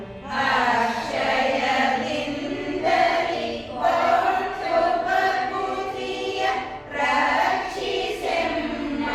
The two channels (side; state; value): both; identical; correlation 1.00